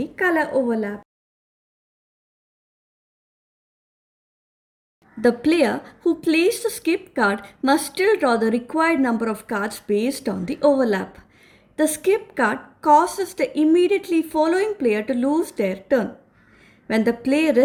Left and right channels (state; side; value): identical; both; correlation 1.00